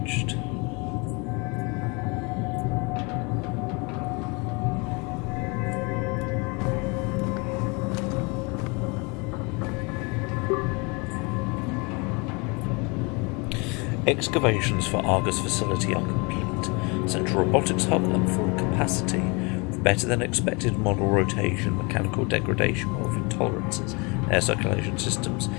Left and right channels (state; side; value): quieter; right; 29.6 dB